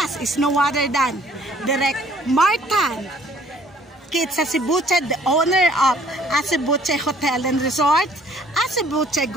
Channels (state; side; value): normal; both; correlation 0.58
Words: us is no other than Direk Martan Kitsacibuche, the owner of Acebuche Hotel and Resort, Acebuche